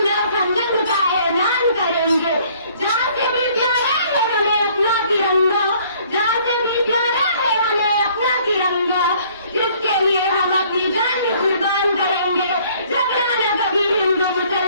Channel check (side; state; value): both; inverted; correlation -0.59